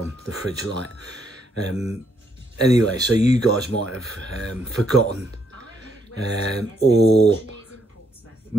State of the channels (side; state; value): both; normal; correlation 0.74